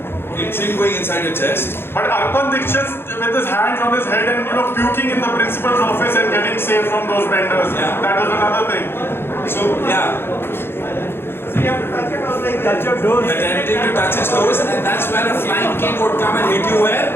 chin going inside your chest. But Arpan Dikshit with his hands on his head and puking in the principal's office and getting saved from those benders. Yeah. That was another thing. So, yeah. So you have to touch your toes, like touch your toes. Attempting to touch his toes, and then that's where a flying king would come and hit you where?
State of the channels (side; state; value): right; late; 0.11 ms